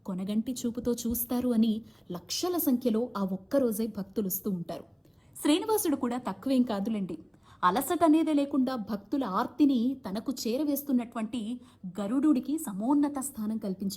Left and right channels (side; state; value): both; identical; correlation 1.00